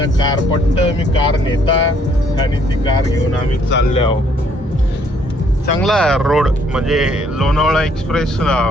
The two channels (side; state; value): both; normal; correlation 0.66